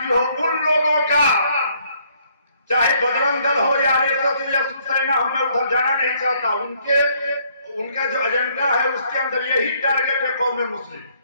हो, उन लोगों का, चाहे बजरंग दल हो या आरएसएस या शिवसेना हो, मैं उधर जाना नहीं चाहता। उनका जो एजेंडा है उसके अंदर यही टारगेट है कौम मुस्लिम,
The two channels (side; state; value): both; inverted; correlation -0.67